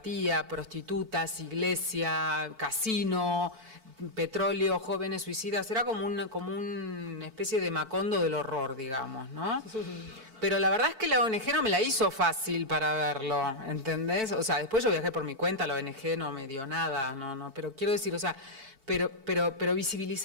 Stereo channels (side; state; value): left; late; 4.5 ms